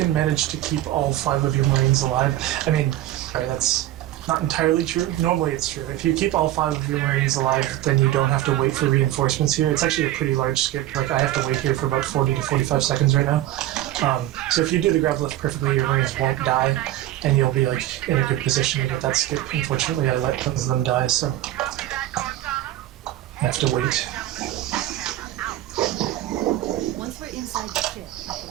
manage to keep all 5 of your Marines alive, I mean, sorry, that's not entirely true. Normally it's true. If you keep all 5 of your Marines alive, then you don't have to wait for reinforcements here. It's actually a pretty large skip. Like, I have to wait here for about 40 to 45 seconds right now. So if you do the grav lift perfectly, your Marines won't die, and you'll be, like, in a good position to get that skip. Unfortunately, I let some of them die, so Copy that, Cortana. I have to wait. Once we're inside the ship, I can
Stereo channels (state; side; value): quieter; left; 14.2 dB